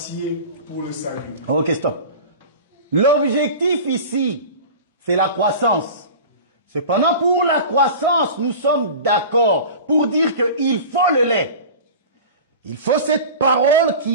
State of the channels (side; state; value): both; inverted; correlation -0.35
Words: pour le salut. Ok, stop. L'objectif ici, c'est la croissance. Cependant, pour la croissance, nous sommes d'accord pour dire qu'il faut le lait. Il faut cette parole